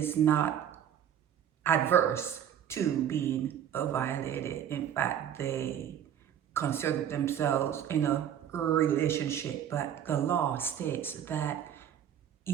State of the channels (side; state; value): left; quieter; 9.7 dB